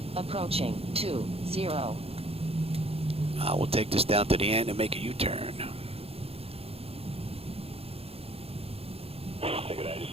Approaching 20. We'll take this down to the end and make a U-turn. Take it out, just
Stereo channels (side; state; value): left; late; 0.28 ms